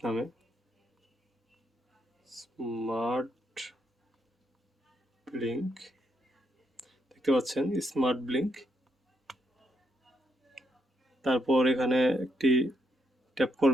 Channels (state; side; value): normal; both; correlation 0.77